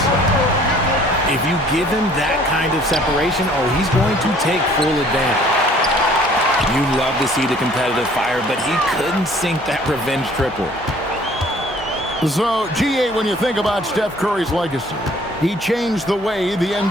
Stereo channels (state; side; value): normal; both; correlation 0.56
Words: If you give him that kind of separation, oh, he's going to take full advantage. You love to see the competitive fire, but he couldn't sink that revenge triple. So, GA, when you think about Steph Curry's legacy, he changed the way the